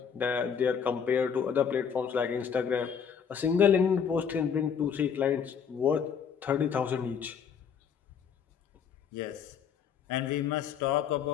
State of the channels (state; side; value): quieter; right; 7.2 dB